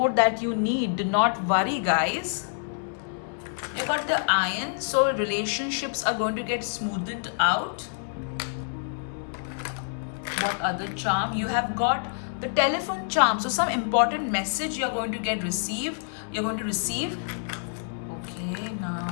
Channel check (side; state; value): right; silent; digital silence